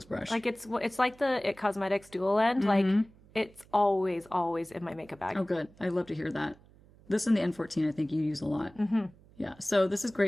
brush. Like it's like the It Cosmetics dual end. Like it's always in my makeup bag. Oh, good. I love to hear that. This and the N14, I think you use a lot. Yeah. So this is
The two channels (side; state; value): right; noise; hum, 26 dB below the sound